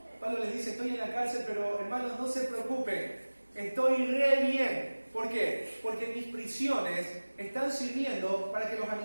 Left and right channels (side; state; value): both; inverted; correlation -1.00